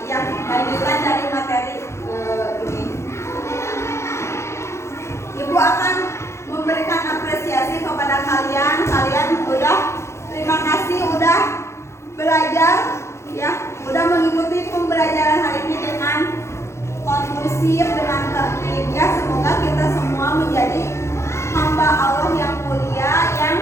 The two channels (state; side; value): late; right; 0.13 ms